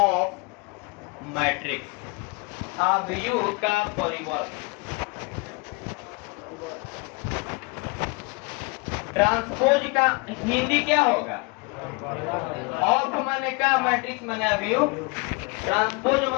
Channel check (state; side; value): quieter; right; 29.3 dB